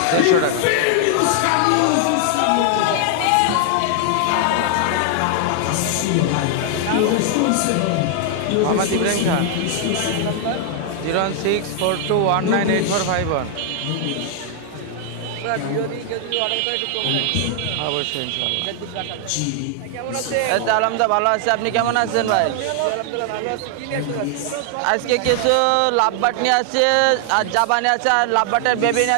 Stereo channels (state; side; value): different; both; correlation 0.00